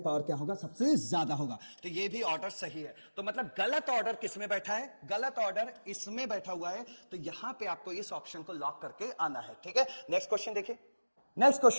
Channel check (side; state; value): both; inverted; correlation -1.00